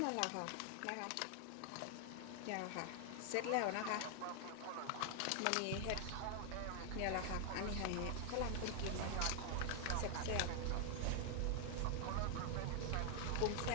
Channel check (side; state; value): both; different; correlation 0.00